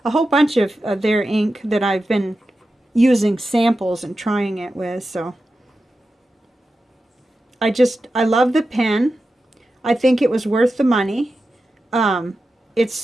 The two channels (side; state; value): both; normal; correlation 0.91